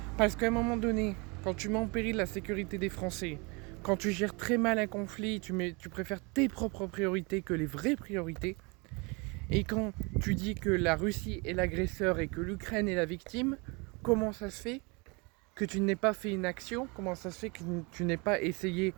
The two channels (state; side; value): quieter; left; 29.3 dB